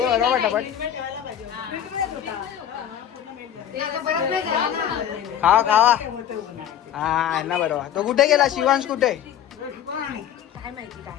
पटापट. खावा हा ना बरोबर. तो कुठे गेला शिवांश कुठे. काय माहिती काय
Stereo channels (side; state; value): right; quieter; 10.2 dB